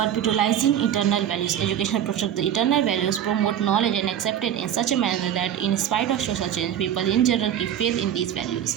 internal values. Education protect the internal values, promote knowledge and accepted in such a manner that in spite of social change people in general keep faith in these values.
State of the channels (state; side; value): quieter; left; 10.0 dB